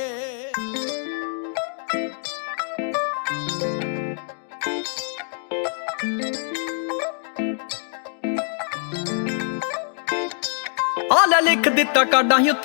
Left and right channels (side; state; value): right; silent; digital silence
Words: ਆਲਾ ਲਿਖ ਦਿੱਤਾ ਕਾਡਾਂ ਹੀ